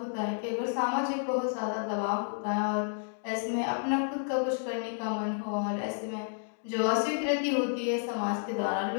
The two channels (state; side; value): silent; right; digital silence